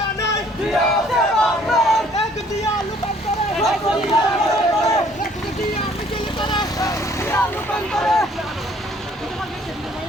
নাই জিয়া আছে বাংলার এক জিয়া লুকান করে এক জিয়া মিছিল করে জিয়া রূপান্তরে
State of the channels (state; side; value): normal; both; correlation 0.59